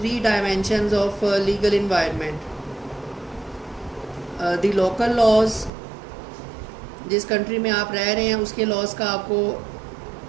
dimensions of legal environment. The local laws, जिस कंट्री में आप रह रहे हैं उसके लॉज का आपको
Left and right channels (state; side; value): drops out; left; at 5.7 s